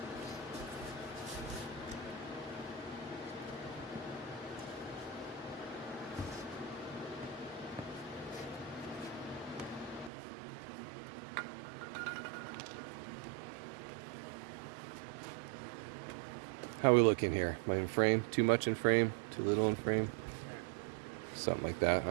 How are we looking here? Am I in frame? Too much in frame? Too little in frame? Something like that,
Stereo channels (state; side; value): drops out; left; at 10.1 s